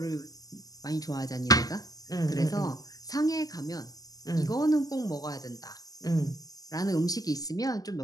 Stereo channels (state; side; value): late; right; 0.17 ms